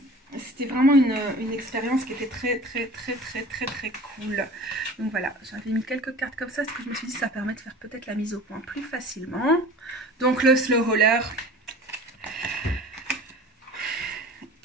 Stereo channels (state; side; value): normal; both; correlation 0.41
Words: c'était vraiment une expérience qui était très, très, très, très, très, très cool. Donc voilà, j'avais mis quelques cartes comme ça, parce que je me suis dit que ça permet de faire peut-être la mise au point plus facilement. Donc le slow roller.